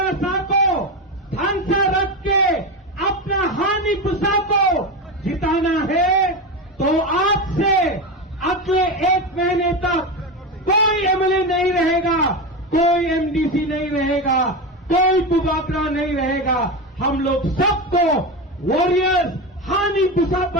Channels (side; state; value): both; normal; correlation 0.18